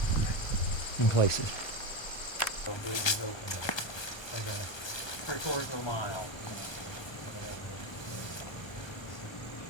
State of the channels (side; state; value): right; late; 1.2 ms